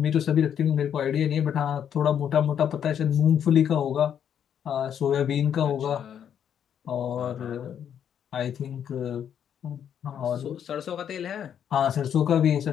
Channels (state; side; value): quieter; right; 8.9 dB